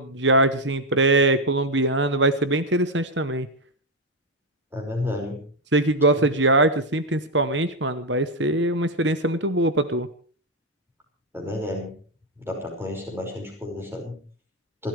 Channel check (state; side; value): normal; both; correlation 0.04